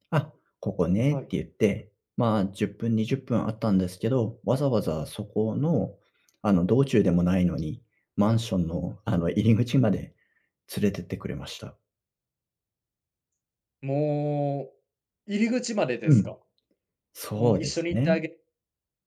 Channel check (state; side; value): identical; both; correlation 1.00